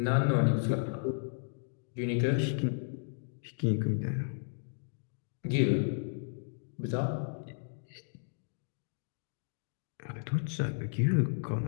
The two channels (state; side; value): silent; right; digital silence